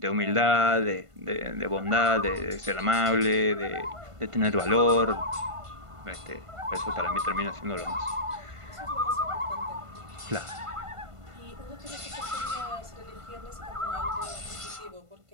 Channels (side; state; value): left; late; 1.5 ms